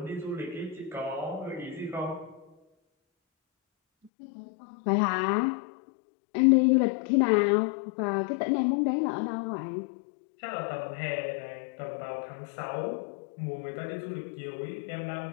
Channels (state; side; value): drops out; right; at 4.1 s